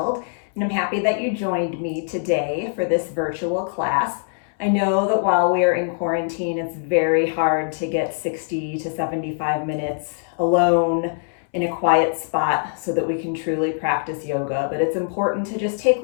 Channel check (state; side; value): silent; right; 64 dB below the other